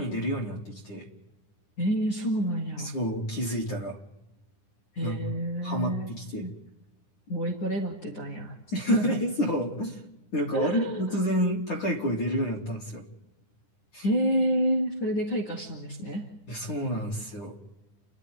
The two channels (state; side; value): late; right; 9.9 ms